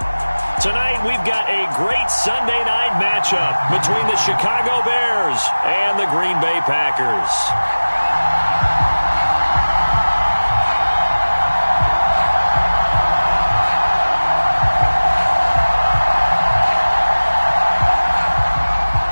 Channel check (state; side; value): inverted; both; correlation -1.00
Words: Tonight we've got a great Sunday night matchup between the Chicago Bears and the Green Bay Packers.